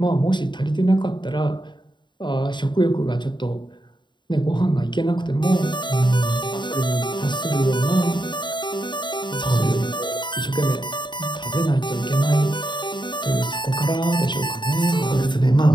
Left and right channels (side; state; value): right; late; 0.22 ms